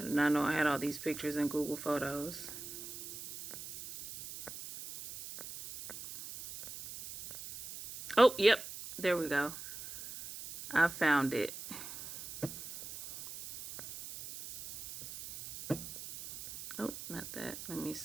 did not know I had all these pictures in Google Photos. Oh, yep. There we go. I found it. Oh, not that. Let me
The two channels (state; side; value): noise; right; hiss, 11 dB below the sound